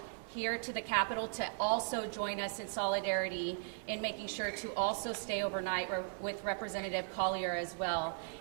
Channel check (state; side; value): silent; left; digital silence